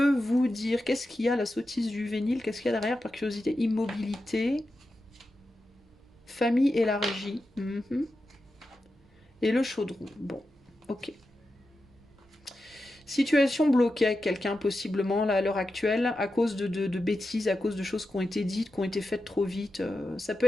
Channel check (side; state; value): both; normal; correlation 0.90